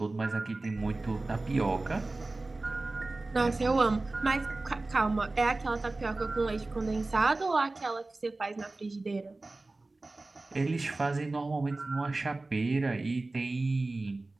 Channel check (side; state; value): left; quieter; 3.1 dB